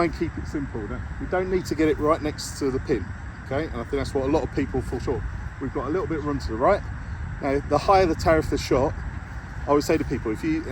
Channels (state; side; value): identical; both; correlation 1.00